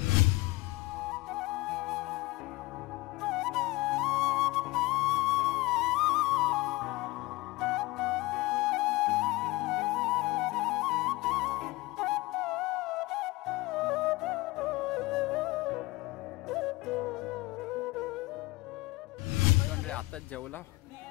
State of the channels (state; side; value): quieter; right; 21.0 dB